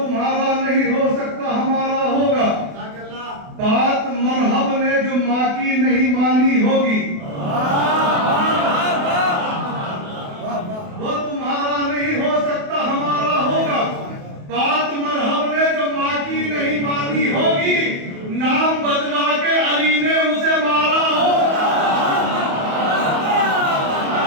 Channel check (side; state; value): left; late; 28 ms